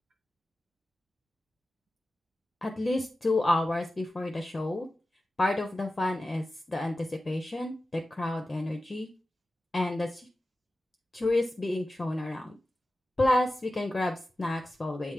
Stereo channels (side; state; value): both; normal; correlation 0.94